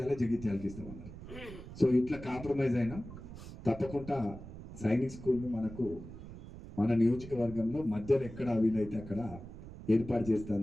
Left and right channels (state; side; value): noise; right; rumble, 13 dB below the sound